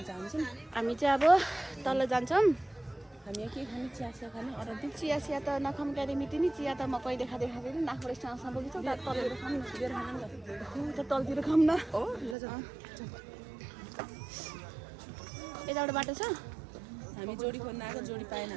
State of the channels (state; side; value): drops out; left; at 12.4 s